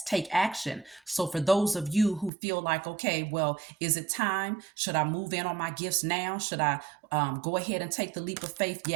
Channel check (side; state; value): left; drops out; at 2.3 s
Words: take action. So for those of you who feel like, okay, well, is it time? Should I move in on my gifts now? Should I go ahead and take the leap of faith?